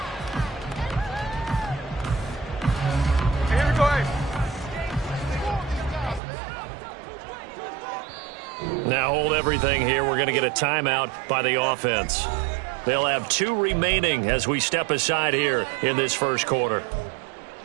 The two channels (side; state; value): left; drops out; at 6.2 s